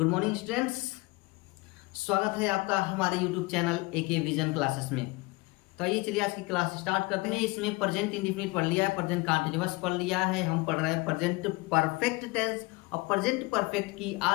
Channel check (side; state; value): right; quieter; 24.2 dB